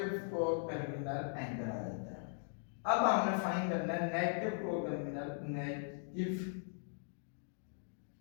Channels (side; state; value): right; silent; digital silence